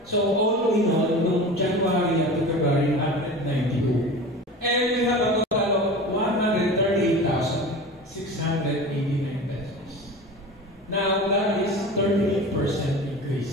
So, all in all, noong January to February, 192. And we have a total of 138,689 pesos. Now, that is 38%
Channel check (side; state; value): both; normal; correlation 0.33